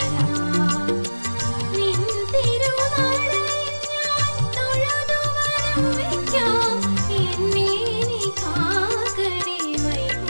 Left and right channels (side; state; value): both; inverted; correlation -1.00